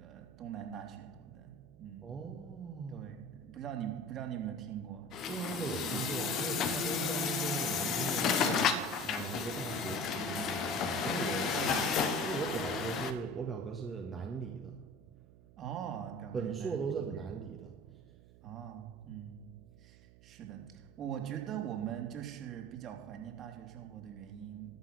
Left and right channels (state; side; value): noise; right; hum, 22 dB below the sound